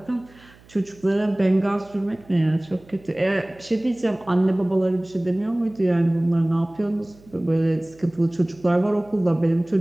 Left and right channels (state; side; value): noise; right; hum, 26 dB below the sound